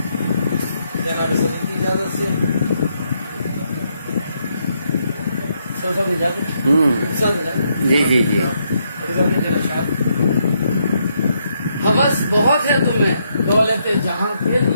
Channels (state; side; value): inverted; both; correlation -0.77